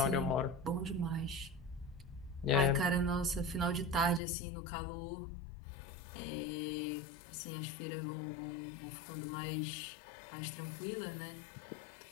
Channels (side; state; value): right; drops out; at 4.2 s